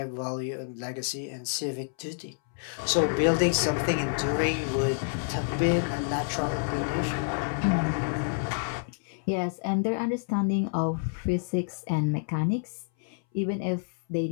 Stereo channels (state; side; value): silent; right; 59 dB below the other